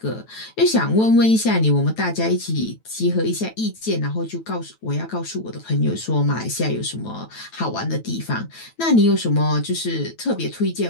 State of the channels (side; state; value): right; late; 9.1 ms